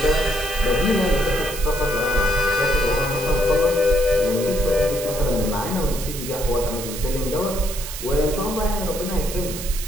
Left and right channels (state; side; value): noise; right; hiss, 9 dB below the sound